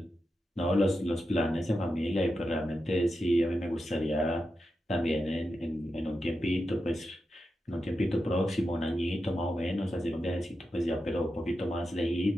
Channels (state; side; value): normal; both; correlation 0.89